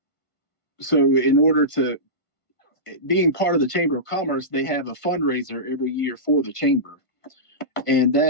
so in order to being part of the Chamber of Commerce, they have a fundraiser every year for the chamber, and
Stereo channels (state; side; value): late; right; 1.5 ms